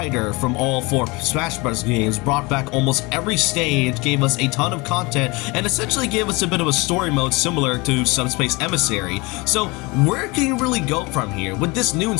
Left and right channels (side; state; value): right; quieter; 25.5 dB